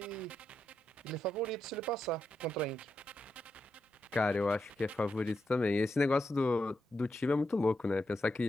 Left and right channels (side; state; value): both; normal; correlation 0.85